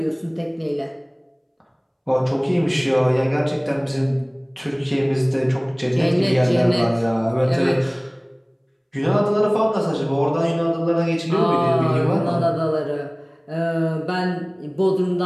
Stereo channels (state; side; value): identical; both; correlation 1.00